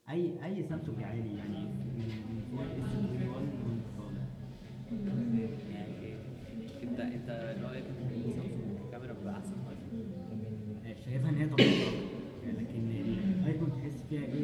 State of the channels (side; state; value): both; identical; correlation 1.00